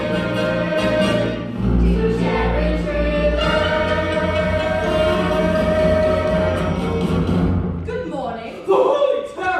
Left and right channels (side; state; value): both; identical; correlation 1.00